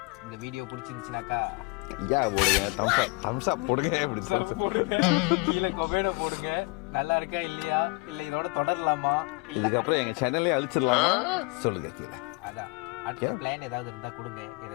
இந்த வீடியோ பிடிச்சிருந்துச்சுனாக்கா ஐயா போடுங்க, தம்ஸ் அப் போடுங்க. போடுங்க, கீழே கொமெண்ட போடுங்க. நல்லா இருக்கா இல்லையா, இல்ல இதோட தொடரலாமா, இல்ல இதுக்கப்புறம் எங்க சேனலே அழிச்சிடலாமா சொல்லுங்க கீழே. அதான் அடுத்த பிளான் ஏதாவது இருந்தா கொடுங்க.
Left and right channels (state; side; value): quieter; right; 28.6 dB